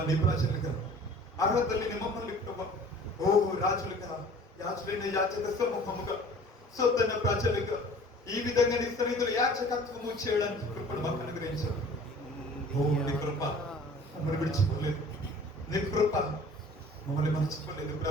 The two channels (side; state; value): both; normal; correlation 0.47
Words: నీ ప్రజలుగా అర్హత లేని మమ్మల్ని ప్రభు ఓ రాజులుగా యాజులైన యాచక సమూహముగా సొంతైన ప్రజలుగా ఈ విధంగా నీ సన్నిధిలో యాచకత్వము చేయడానికి కృపను మాకు అనుగ్రహించారు. ఓ నీ కృప మమ్మల్ని విడిచిపోలేదు, నీ కృప మమ్మల్ని మర్చిపోలేదు